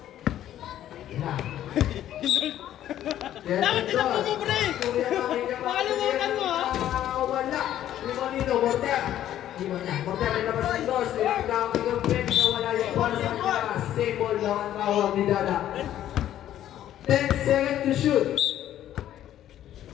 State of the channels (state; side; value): quieter; right; 11.9 dB